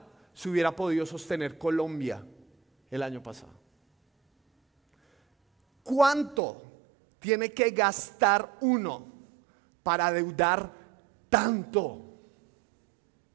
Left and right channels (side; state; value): left; drops out; at 6.4 s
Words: se hubiera podido sostener Colombia el año pasado. ¿Cuánto tiene que gastar uno para adeudar tanto?